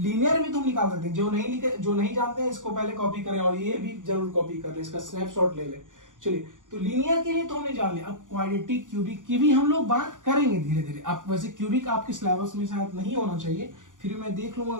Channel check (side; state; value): left; late; 0.87 ms